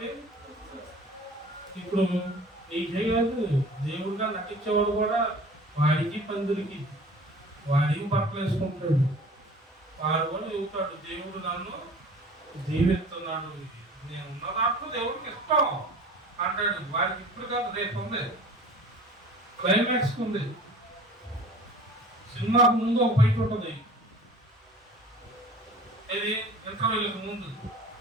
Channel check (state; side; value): normal; both; correlation 0.44